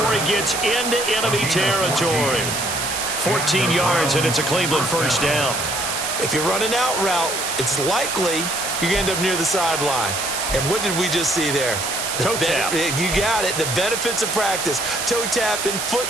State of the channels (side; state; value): right; noise; hiss, 3 dB below the sound